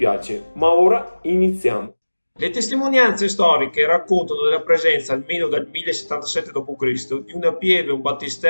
ma ora iniziamo. Le testimonianze storiche raccontano della presenza, almeno dal 1077 d.C., di una pieve, un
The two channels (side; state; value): both; inverted; correlation -1.00